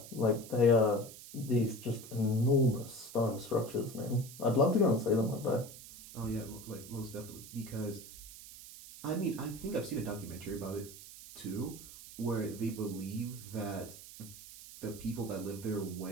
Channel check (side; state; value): right; noise; hiss, 15 dB below the sound